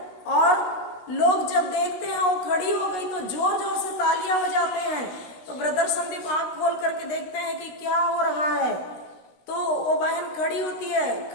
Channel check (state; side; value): late; right; 16 ms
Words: और लोग जब देखते हैं वो खड़ी हो गई तो जोर जोर से तालियां बजाते हैं। तो ब्रदर संदीप आंख खोल करके देखते हैं कि क्या हो रहा है। तो वो बहन खड़ी होती है,